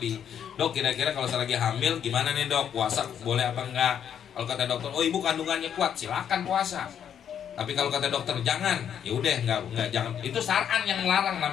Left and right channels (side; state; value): right; quieter; 8.9 dB